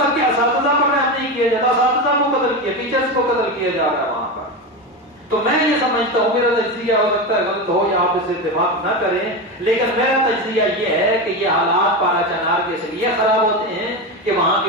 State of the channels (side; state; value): both; normal; correlation 0.18